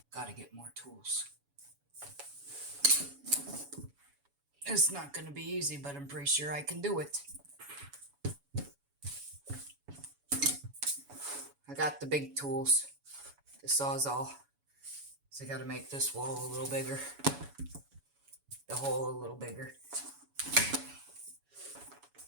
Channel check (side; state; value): left; late; 7.1 ms